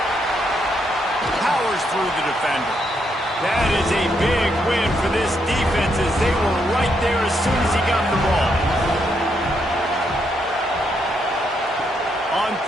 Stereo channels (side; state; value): both; normal; correlation 0.77